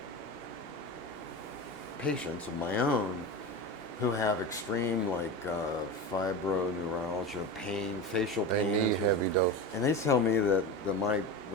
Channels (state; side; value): late; left; 2.8 ms